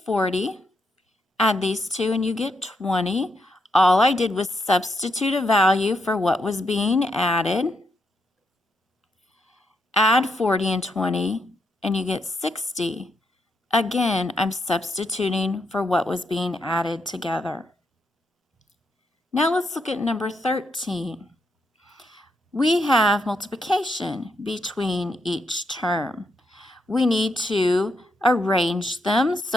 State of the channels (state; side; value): normal; both; correlation 0.79